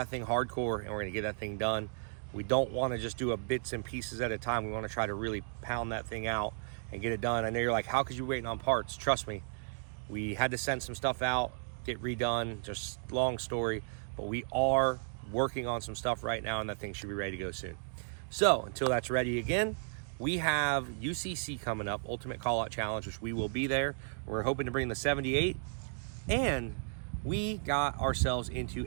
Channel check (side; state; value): left; silent; digital silence